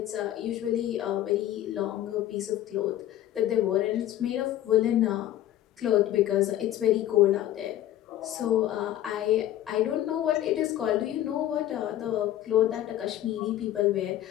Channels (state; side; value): quieter; right; 12.9 dB